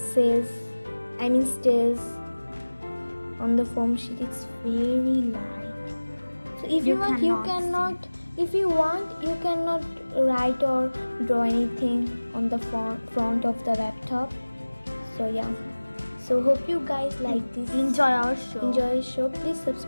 on the foam sheet. It's very light. So if you want, you cannot write or draw anything on the front of the laptop. So So hope you guys like this. Enjoy our show. Enjoy the show. Please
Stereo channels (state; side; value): inverted; both; correlation -1.00